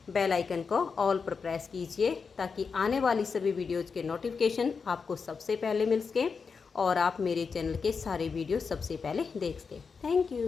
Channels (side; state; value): right; quieter; 5.4 dB